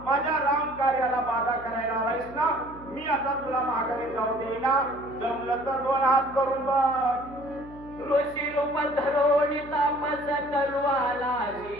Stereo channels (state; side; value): noise; right; hum, 19 dB below the sound